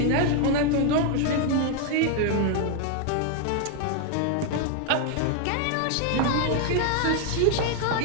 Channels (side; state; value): both; different; correlation 0.00